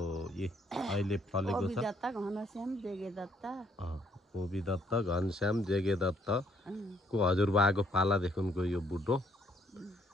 अहिले फलेको छ कोबी दत्त घनश्याम जेगे दत्त को हजुरबाको पालादेखिको यो बुढो।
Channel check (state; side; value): normal; both; correlation 0.68